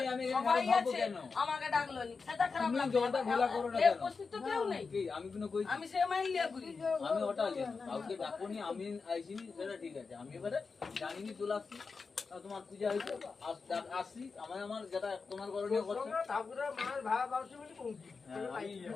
আমি সবাই ভাববো আছে কেন আমাকে ডাকলো নি সেটা খারাপ তুমি লাগতো জলটা ঘোলা করো না এ কেন উপস্থিত তো কেউ নেই কি আমি কোনো কই আমি সে মাইল লিয়া করি আমি ওটা জানি কাউকে ডাকুনি আমি আইছিনি সেটা ঠিক আছে আমি এবারে জানিনি চলে আসছি তোমার পূজা হয়েছে আসছি আমার যেটা তোমার করণীয় করছে ঠাকুরের মায়ের ভাড়া বাউসি বলি পৌঁছি।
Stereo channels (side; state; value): right; quieter; 4.7 dB